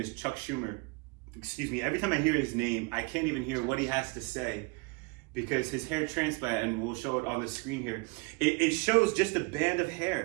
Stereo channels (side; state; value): left; quieter; 28.2 dB